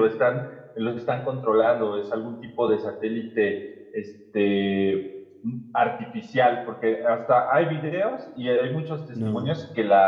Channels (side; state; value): both; identical; correlation 1.00